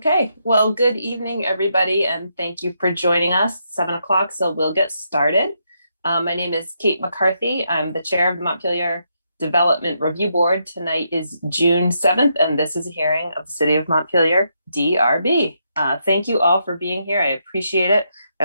well, good evening, everybody, and thank you for joining us. 7 o'clock, so we'll get started. My name is Kate McCarthy. I'm the chair of the Montpelier Development Review Board. Tonight is June 7th, and this is a hearing of the City of Montpelier, DRB. Thank you all for being here. I appreciate it. I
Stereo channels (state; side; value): inverted; both; correlation -0.79